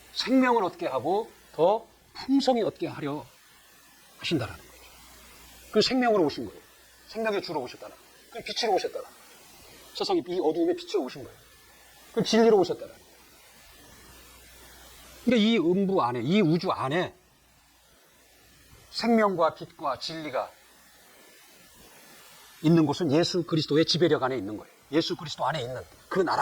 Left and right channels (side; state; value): both; identical; correlation 1.00